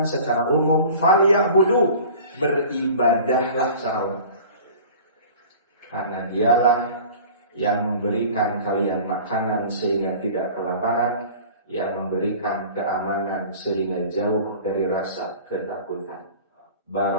secara umum, falyabudu, beribadahlah secara umum, karena dialah yang memberikan kalian makanan sehingga tidak kelaparan, yang memberikan keamanan sehingga jauh dari rasa ketakutan.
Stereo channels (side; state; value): both; inverted; correlation -0.42